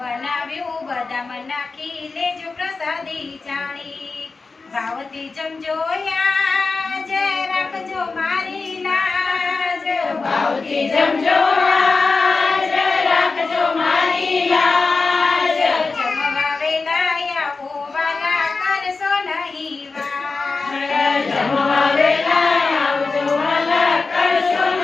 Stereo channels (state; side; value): quieter; right; 4.1 dB